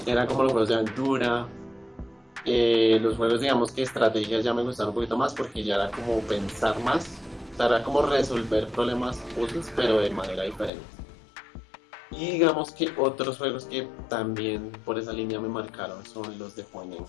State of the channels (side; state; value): right; drops out; at 10.7 s